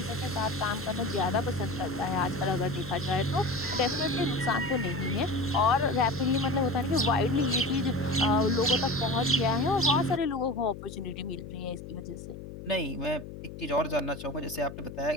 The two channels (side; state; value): left; noise; hum, 12 dB below the sound